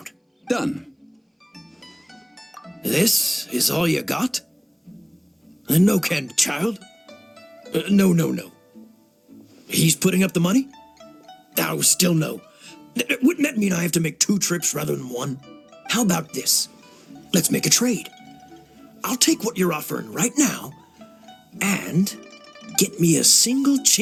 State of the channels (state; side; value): identical; both; correlation 1.00